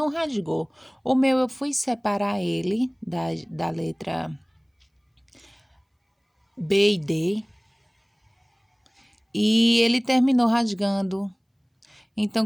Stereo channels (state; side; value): identical; both; correlation 1.00